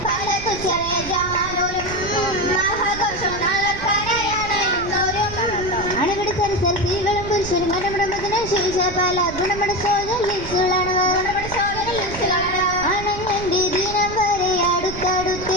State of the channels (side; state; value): right; noise; rumble, 11 dB below the sound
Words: പലതു ചെറിയ ജമാനോരും മഹഘോഷം നാളർപ്പാനായാണ് എന്നോരും അണുപിടി സരസർ സ്ത്രീകളും പുരുഷനും ഗണപടമതിന് ശേഷ പല ഗുണമട സോജലികളാണ് അണങ്ങന്റെ ദിനം വരെ